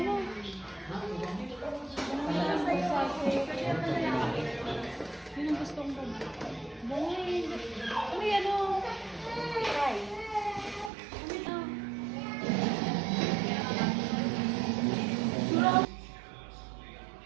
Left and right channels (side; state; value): left; drops out; at 10.9 s